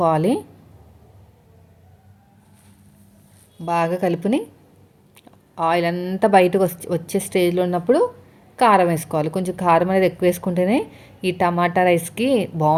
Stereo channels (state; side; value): identical; both; correlation 1.00